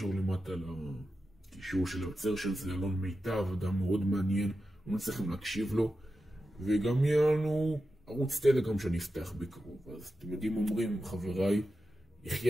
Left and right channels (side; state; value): both; normal; correlation 0.91